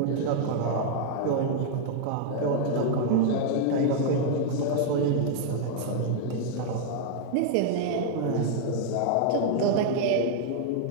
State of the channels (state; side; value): different; both; correlation 0.00